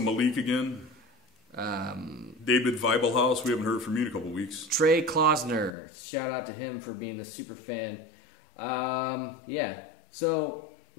again. David Weibelhaus. We haven't heard from you in a couple weeks. Trey Klausner. Shout out to him for being a super fan. Yeah. So.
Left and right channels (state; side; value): drops out; right; at 5.7 s